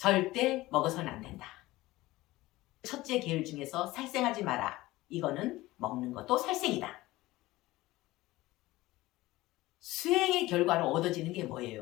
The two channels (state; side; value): quieter; right; 18.4 dB